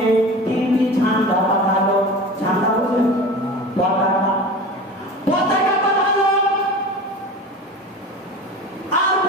তিনটি ঝান্ডা পাঠালো। ঝান্ডা বলতে পতাকা পাঠালো, আর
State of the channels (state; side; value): normal; both; correlation 0.34